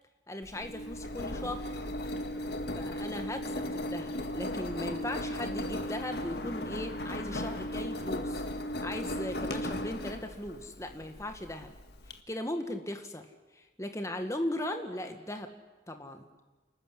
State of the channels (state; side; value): normal; both; correlation 0.49